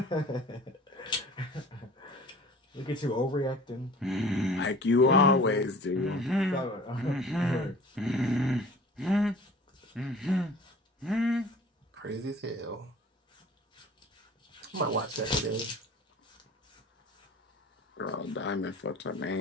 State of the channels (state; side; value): normal; both; correlation 0.45